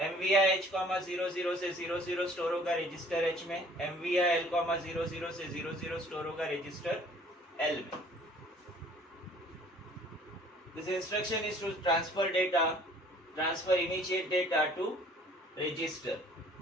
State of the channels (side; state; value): both; normal; correlation 0.54